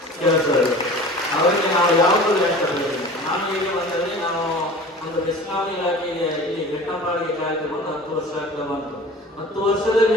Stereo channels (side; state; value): both; normal; correlation 0.41